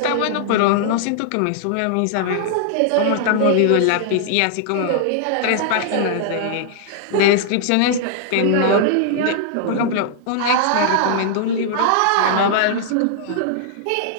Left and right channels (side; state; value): both; different; correlation -0.01